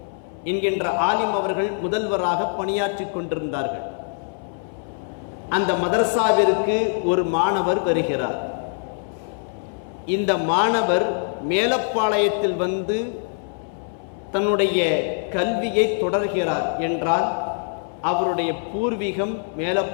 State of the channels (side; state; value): right; silent; 59 dB below the other